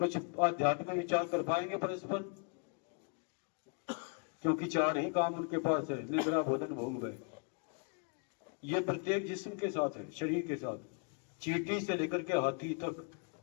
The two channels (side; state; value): right; quieter; 39.2 dB